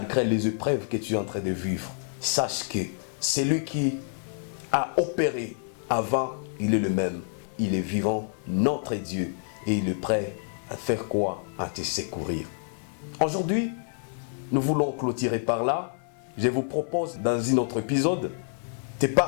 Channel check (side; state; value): right; silent; digital silence